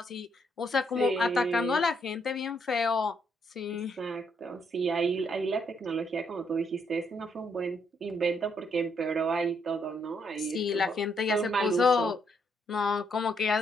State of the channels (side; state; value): both; normal; correlation 0.74